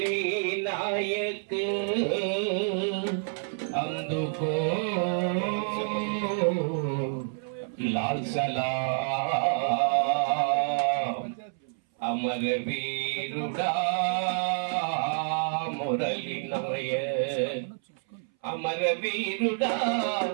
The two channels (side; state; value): left; silent; 59 dB below the other